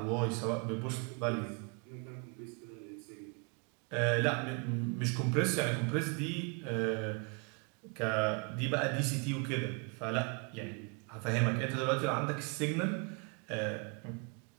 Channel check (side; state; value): left; quieter; 34.4 dB